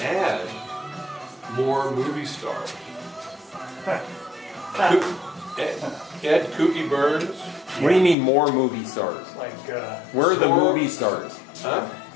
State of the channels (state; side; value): drops out; right; at 8.2 s